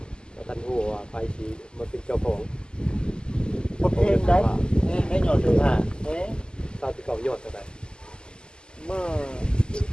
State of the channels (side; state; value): right; late; 0.047 ms